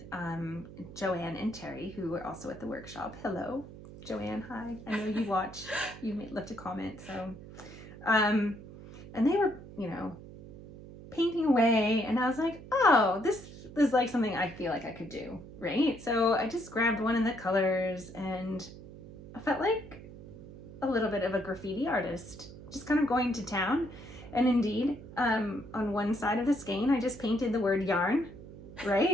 Joanne and Terry, who were also at the workshop. Hello, Joanne. Hi. I know you watched. You left a comment. So, and they were, you know, painting away, and I was like, oh, this is like something I feel like I could do, right? So I just grabbed one of the colors, and I felt like a little bit of a graffiti artist, just kind of going to town. And indeed, on one side of the skein, I just painted the word yarn,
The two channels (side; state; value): right; noise; hum, 15 dB below the sound